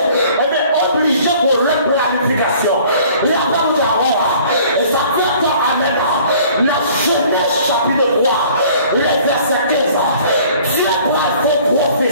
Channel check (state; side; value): inverted; both; correlation -0.53